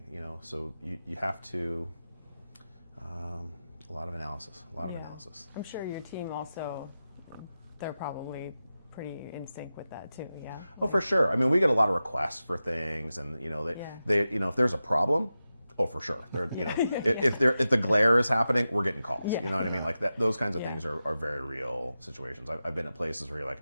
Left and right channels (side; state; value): both; inverted; correlation -0.92